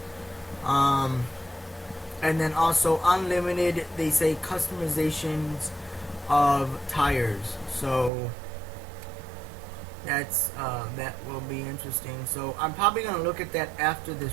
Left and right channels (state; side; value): drops out; left; at 8.1 s